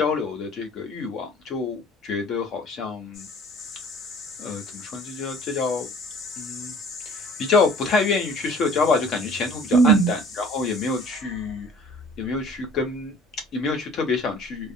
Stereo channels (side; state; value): both; normal; correlation 0.50